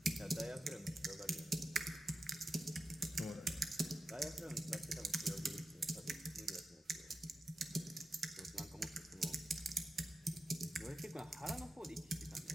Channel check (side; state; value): both; normal; correlation 0.92